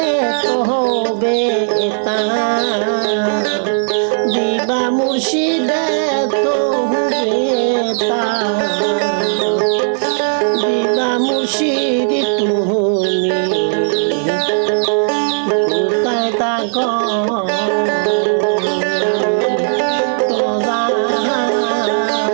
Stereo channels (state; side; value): silent; left; 68 dB below the other